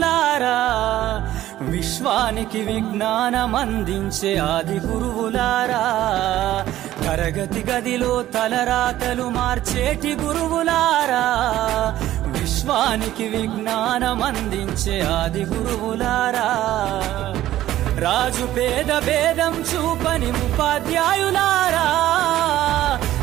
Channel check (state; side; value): quieter; left; 13.9 dB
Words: విశ్వానికి విజ్ఞానం అందించే ఆది గురువులారా. తరగతి గదిలో తలరాతలు మార్చేటి గురువులారా, విశ్వానికి విజ్ఞానం అందించే ఆది గురువులారా. రాజు పేద భేదం చూపని ఉపాధ్యాయులారా,